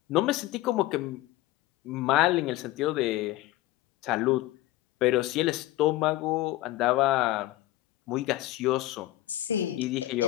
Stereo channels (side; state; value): right; quieter; 16.4 dB